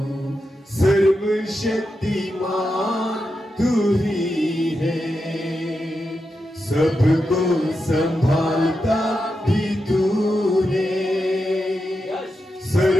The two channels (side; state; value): both; normal; correlation 0.88